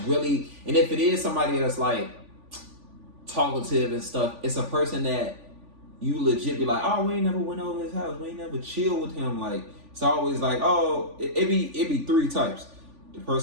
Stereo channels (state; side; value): late; left; 3.5 ms